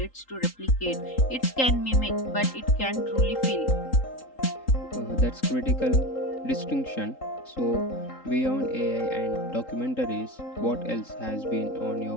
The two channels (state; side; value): late; right; 3.8 ms